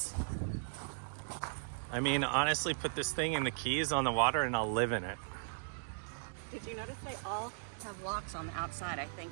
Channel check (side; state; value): left; silent; digital silence